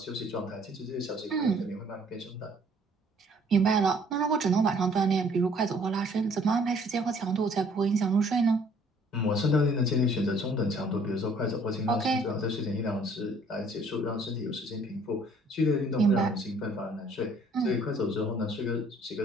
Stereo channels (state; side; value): normal; both; correlation 0.59